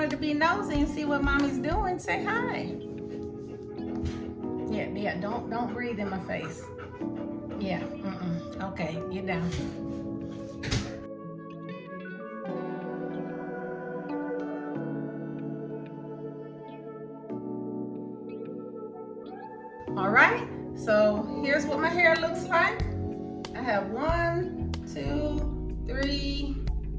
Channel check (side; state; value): both; identical; correlation 1.00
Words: to be nosy and see what mommy's doing. Say hi. Yeah, don't breathe in my face. Yeah, okay, get down. All right, so here's what my hair looks like. I have 1, 2, 3,